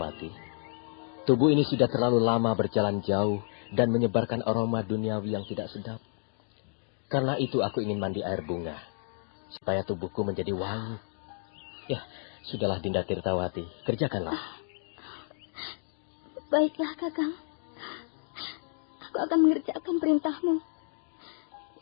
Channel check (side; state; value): right; silent; 56 dB below the other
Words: Tubuh ini sudah terlalu lama berjalan jauh dan menyebarkan aroma duniawi yang tidak sedap. Karena itu aku ingin mandi air bunga, supaya tubuhku menjadi wangi. Ya, sudahlah Dinda Tirtawati, kerjakanlah. Baiklah, Kakang. Aku akan mengerjakan perintahmu.